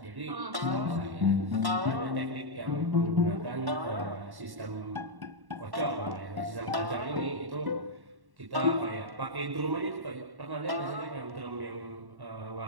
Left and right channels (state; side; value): late; left; 1.1 ms